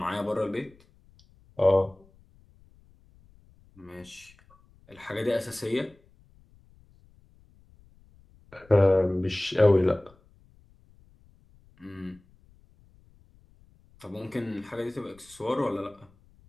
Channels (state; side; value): noise; left; rumble, 29 dB below the sound